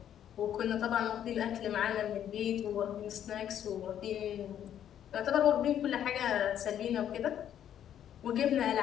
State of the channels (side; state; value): right; quieter; 10.1 dB